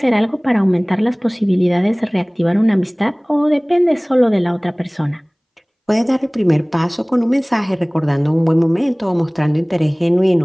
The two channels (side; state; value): both; identical; correlation 1.00